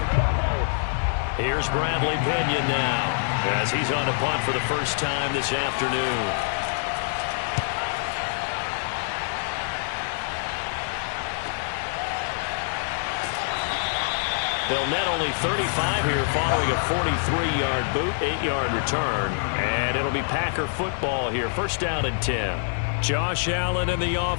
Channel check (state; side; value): silent; right; digital silence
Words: Here's Bradley Pinion now as he's on to punt for the first time this afternoon. They'll net only 35 here following a 43-yard boot, 8-yard return. And it'll be Packer football here. First down and 10. Josh Allen in the